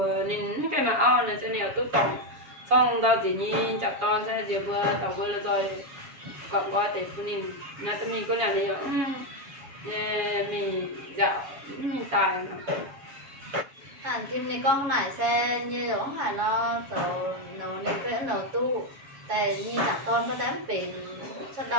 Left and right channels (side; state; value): left; late; 7.2 ms